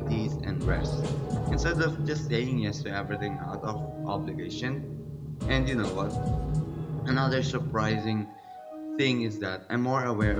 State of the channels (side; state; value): both; identical; correlation 1.00